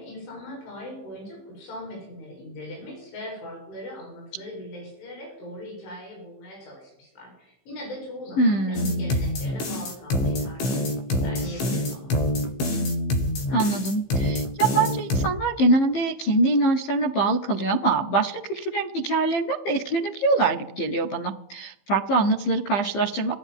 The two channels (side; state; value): right; late; 15 ms